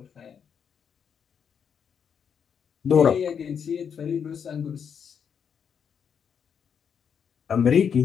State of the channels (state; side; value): quieter; right; 7.3 dB